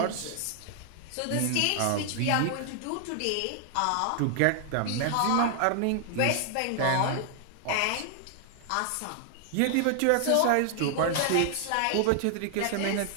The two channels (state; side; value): different; both; correlation 0.00